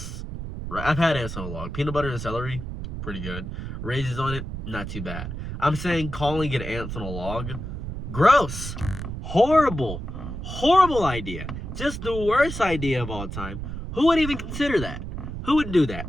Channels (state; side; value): noise; right; rumble, 7 dB below the sound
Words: Right? I've had ants on a log. Peanut butter and celery, pretty good. Raisins on it, not too bad. I'm saying calling it ants on a log, gross. Horrible. Horrible idea. Just the worst idea of all time. Who would even consider that? Who would do that?